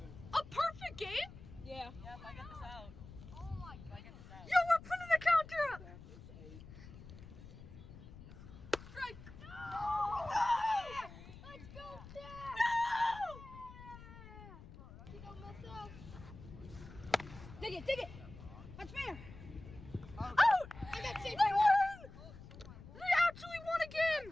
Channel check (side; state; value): left; noise; rumble, 16 dB below the sound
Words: A perfect game? Yeah. Yeah, if I get this out. Oh my If I get this out. Yo, we're putting the counter up. Strike. Let's go, Dad. You don't mess up. Dig it. That's fair. Out. I got safe. They won. They actually won a game.